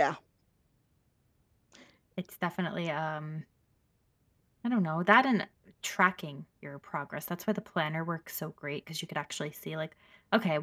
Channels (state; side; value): identical; both; correlation 1.00